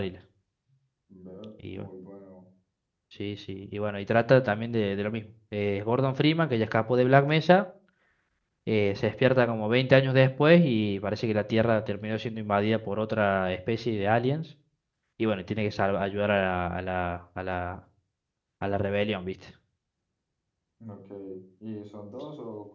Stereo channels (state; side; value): identical; both; correlation 1.00